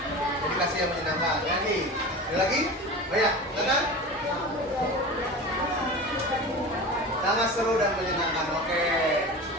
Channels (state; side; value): normal; both; correlation 0.32